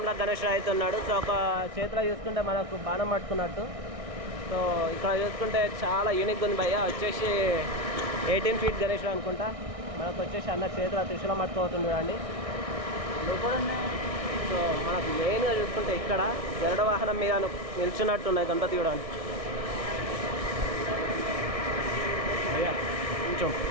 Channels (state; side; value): late; left; 1.6 ms